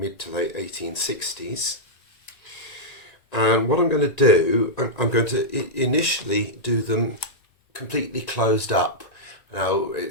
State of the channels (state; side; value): late; right; 1.9 ms